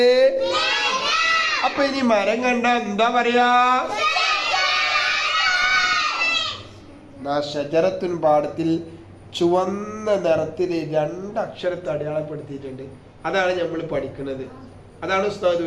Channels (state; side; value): identical; both; correlation 1.00